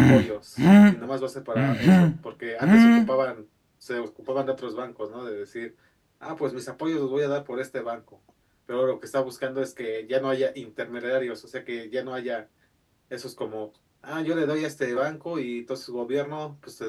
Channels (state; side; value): identical; both; correlation 1.00